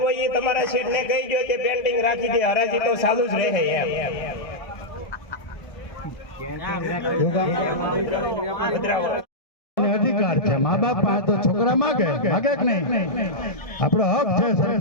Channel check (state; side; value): late; right; 1.6 ms